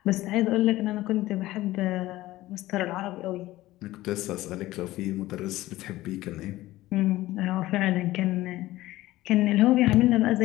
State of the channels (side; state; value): right; quieter; 16.8 dB